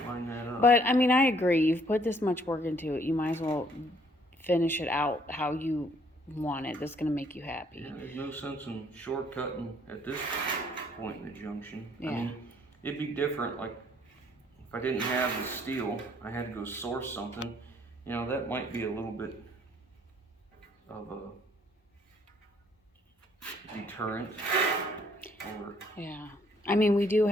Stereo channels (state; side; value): normal; both; correlation 0.63